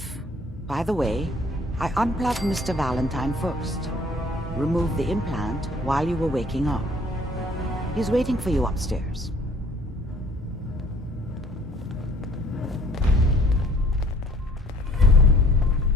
By the way, I unplugged Mr. Valentine first. Removed the implant while you were waking up. He's waiting for you upstairs.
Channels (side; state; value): both; normal; correlation 0.56